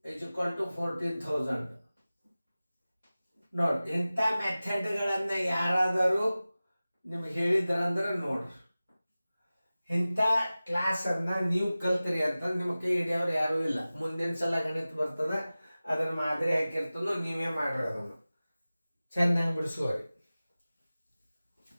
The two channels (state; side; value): inverted; both; correlation -0.97